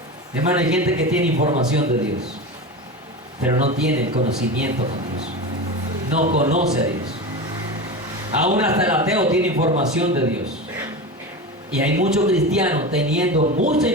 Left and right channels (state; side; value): normal; both; correlation 0.25